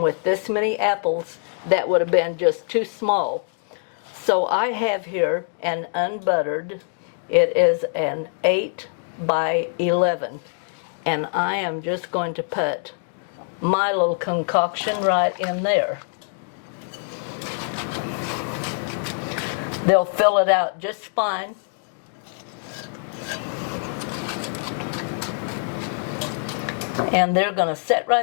with this many apples, that would have been just too small. So I have here an unbuttered, it is an 8 by 11. And I am just going to put my little concoction right in there. They'll fill it out just fine. And they're going to sit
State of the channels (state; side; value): silent; right; 63 dB below the other